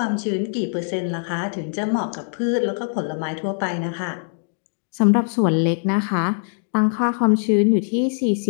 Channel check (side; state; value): right; silent; digital silence